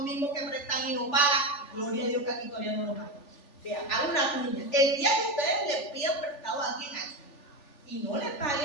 mismos que prestan y no pagan. Gloria a Dios que aquí todavía no lo pagan. Vean, hagan una cuña. El día que ustedes le pidan prestado a alguien aquí y no le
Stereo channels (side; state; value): right; late; 3.4 ms